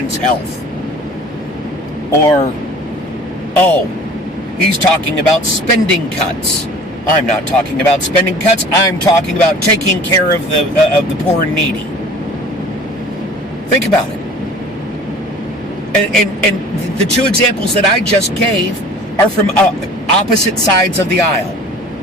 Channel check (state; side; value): normal; both; correlation 0.45